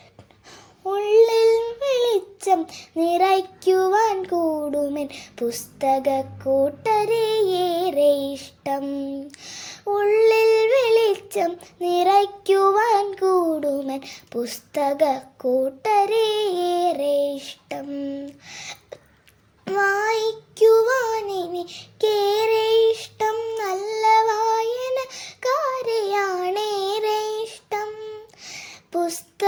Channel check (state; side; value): identical; both; correlation 1.00